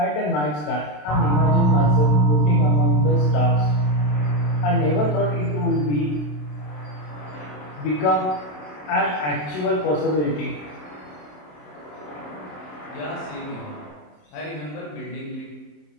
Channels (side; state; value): right; late; 27 ms